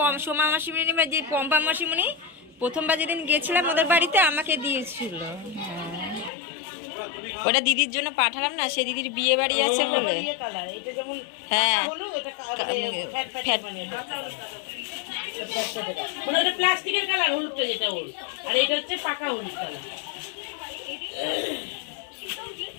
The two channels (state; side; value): drops out; right; at 6.3 s